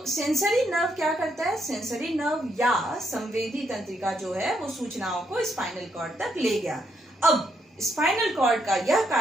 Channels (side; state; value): both; normal; correlation 0.76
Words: सेंसरी नर्व क्या करता है? सेंसरी नर्व या संवेदी तंत्रिका जो है वो सूचनाओं को स्पाइनल कॉर्ड तक ले गया। अब स्पाइनल कॉर्ड का यह